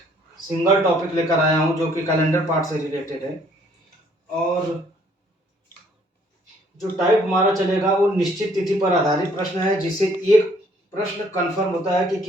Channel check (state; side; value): normal; both; correlation 0.62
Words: सिंगल टॉपिक लेकर आया हूं जो कि कैलेंडर पार्ट से रिलेटेड है। और जो टाइप हमारा चलेगा वो निश्चित तिथि पर आधारित प्रश्न है, जिससे एक प्रश्न कंफर्म होता है कि